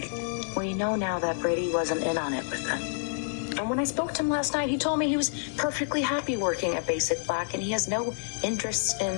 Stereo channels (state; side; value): silent; right; digital silence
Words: We know now that Brady wasn't in on it with them. And when I spoke to him last night, he told me he was perfectly happy working at Basic Black, and he has no interest